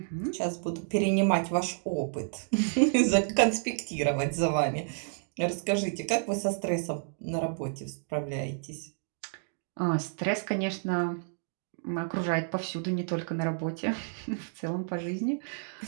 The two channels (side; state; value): left; silent; digital silence